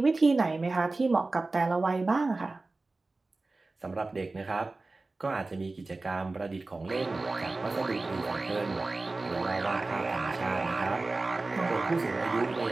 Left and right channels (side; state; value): left; quieter; 3.3 dB